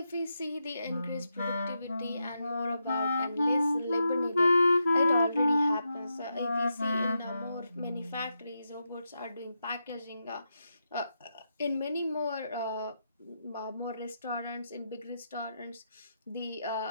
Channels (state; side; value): inverted; both; correlation -0.85